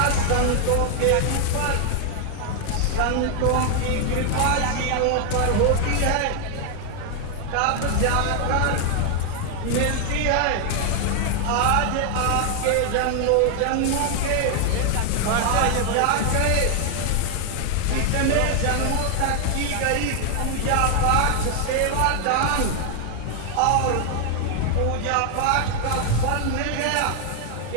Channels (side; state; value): both; different; correlation 0.00